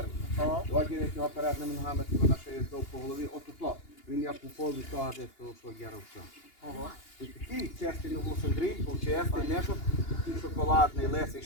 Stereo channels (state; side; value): late; right; 2.8 ms